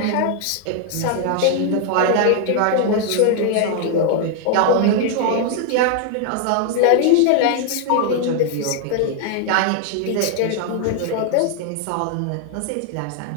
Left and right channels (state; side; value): different; both; correlation 0.00